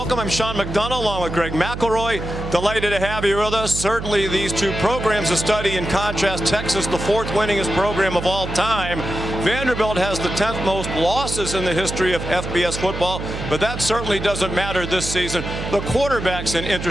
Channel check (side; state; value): right; noise; hum, 7 dB below the sound